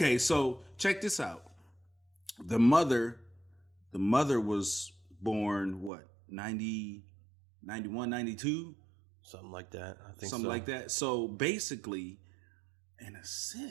so check this out. The mother was born what? 90, 91, 92? Something like that. I think something like that. So basically, in a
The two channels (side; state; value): left; drops out; at 5.9 s